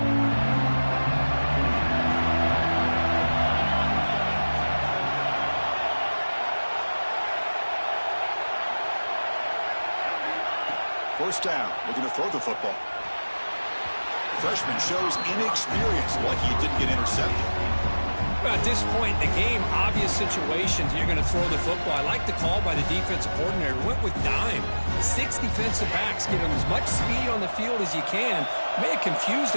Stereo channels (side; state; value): both; inverted; correlation -1.00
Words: First down. We're going to throw the football. The freshman shows inexperience, like he didn't get intercepted. Well, at this point in the game, obvious situations, you're going to throw the football. I like the call by the defensive coordinator. Went with dime. 6 defensive backs, get him as much speed on the field as you can. May have confused